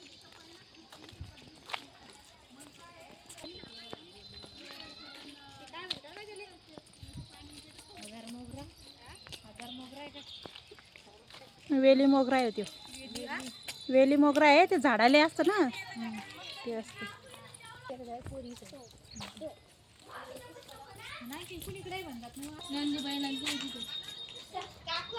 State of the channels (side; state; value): both; identical; correlation 1.00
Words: वेली मोगरा आहे तो. वेली मोगरा आहे ते झाडाले असतं ना ते असतं.